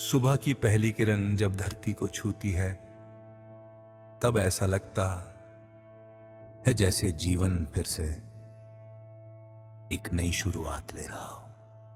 की पहली किरण जब धरती को छूती है, तब ऐसा लगता है जैसे जीवन फिर से एक नई शुरुआत ले रहा हो।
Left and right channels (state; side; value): identical; both; correlation 1.00